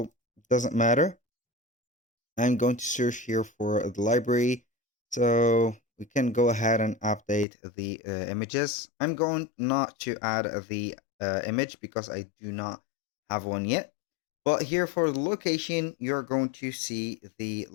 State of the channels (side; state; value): right; drops out; at 7.5 s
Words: it doesn't matter. I'm going to search here for the library. So we can go ahead and update the images. I'm going not to add the image because I do not have one yet. But here for the location, you're going to see the